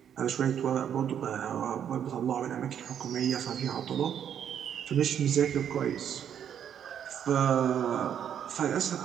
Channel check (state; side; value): quieter; left; 9.0 dB